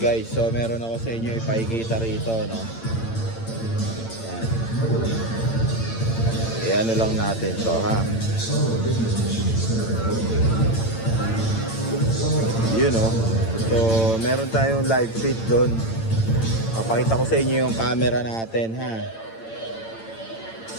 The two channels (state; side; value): late; right; 8.9 ms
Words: so meron ako sa inyo ipakikita rito, no? Yan. Ano lang natin to, ha? Yun, no? So, meron tayong live feed doon. Papakita ko sa inyo yung camera natin, ha?